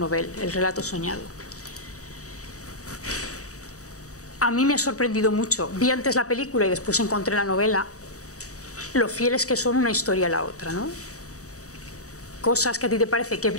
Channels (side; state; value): right; late; 0.66 ms